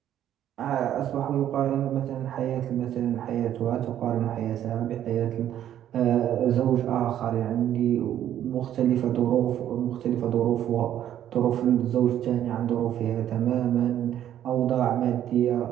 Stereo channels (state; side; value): quieter; left; 11.1 dB